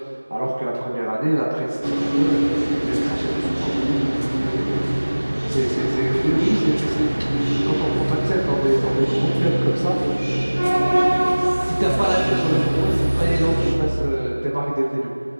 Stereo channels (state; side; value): inverted; both; correlation -1.00